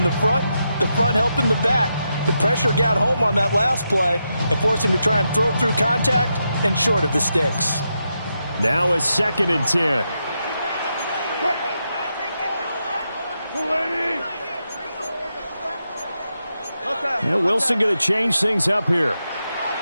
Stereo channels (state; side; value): inverted; both; correlation -0.85